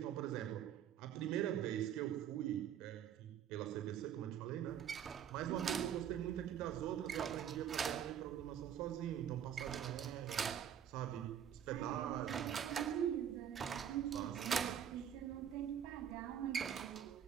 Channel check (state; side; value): quieter; left; 9.4 dB